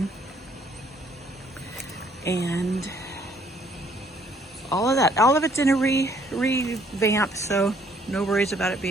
and all of it's in a revamp, so no worries about it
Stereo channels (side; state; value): both; normal; correlation 0.64